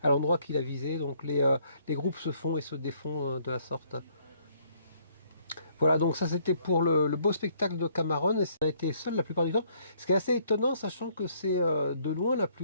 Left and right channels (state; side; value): inverted; both; correlation -0.65